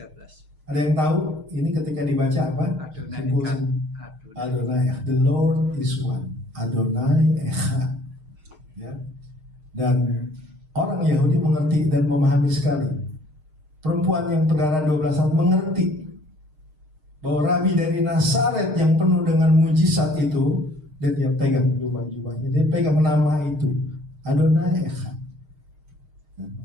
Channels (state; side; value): late; left; 6.5 ms